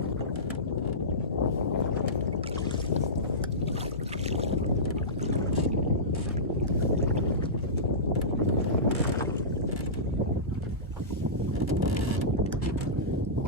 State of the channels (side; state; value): both; normal; correlation -0.18